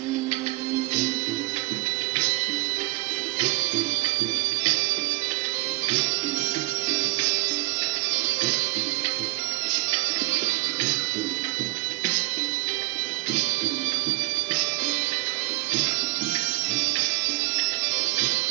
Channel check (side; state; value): left; quieter; 23.6 dB